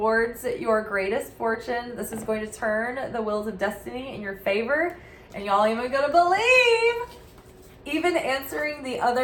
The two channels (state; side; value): identical; both; correlation 1.00